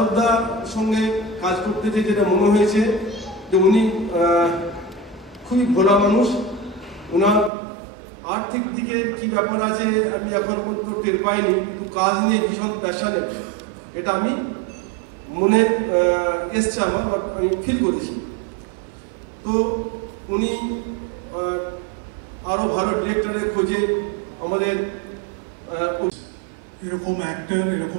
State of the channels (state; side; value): drops out; left; at 7.5 s